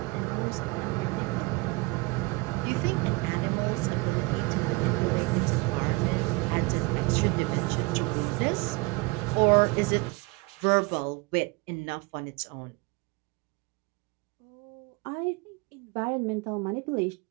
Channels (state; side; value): quieter; left; 25.6 dB